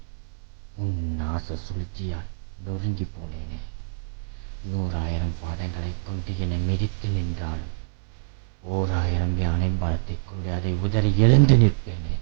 உன் நாச சூழ்ச்சியால் நொறுங்கி போனேனே. 100,000 பாதங்களைக் கொண்டு என்னை மிதித்து நின்றாலும் 1000 யானை பலத்தைக் கொண்டு அதை உதறி எழுந்து நிற்பேனே.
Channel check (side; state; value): left; silent; digital silence